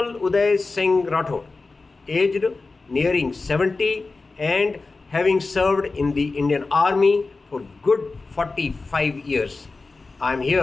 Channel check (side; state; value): right; quieter; 3.8 dB